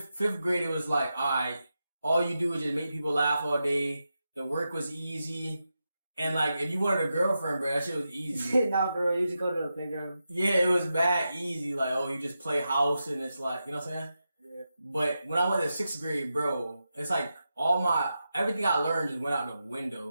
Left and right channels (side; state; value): both; inverted; correlation -0.89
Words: grade, it was like, alright, all you do is just make people laugh all day. The work was easy. And like, if you wanted a girlfriend, bro, that shit was easy. Nah, bro, you just go to the playground. Yeah, it was bad easy. Like, oh, you just play house and it's like, you know what I'm saying? Yeah. But when I went to 6th grade, bro, it's like everything I learned just went out the